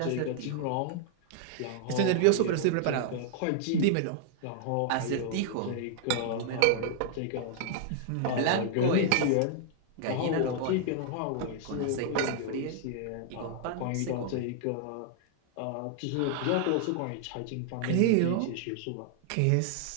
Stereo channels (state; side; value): different; both; correlation 0.00